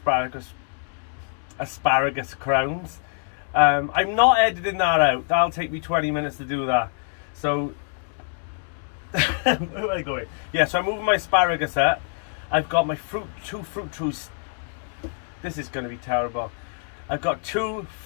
crowns. I'm not editing that out. That'll take me 20 minutes to do that. So where am I going? Yeah, so I'm moving my asparagus up. I've got my 2 fruit trees. This is going to be terrible. I've got 2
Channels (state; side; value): silent; right; 62 dB below the other